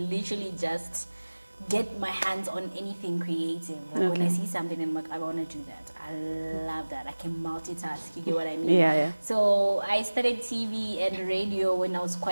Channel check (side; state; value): both; inverted; correlation -1.00